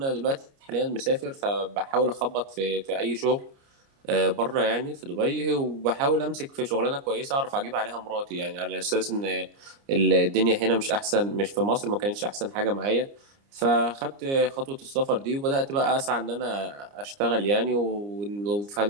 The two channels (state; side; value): late; left; 29 ms